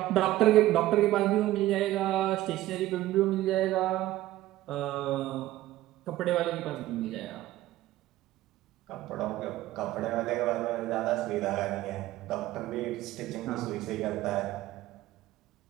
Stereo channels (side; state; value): left; quieter; 15.4 dB